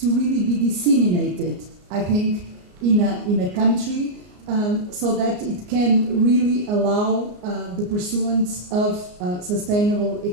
really be disseminated, I think, in a country, so that it can really allow the pursuance of sustainable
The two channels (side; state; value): left; late; 34 ms